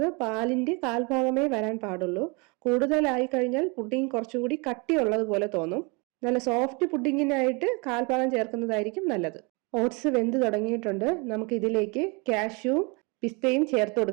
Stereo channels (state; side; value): quieter; left; 30.2 dB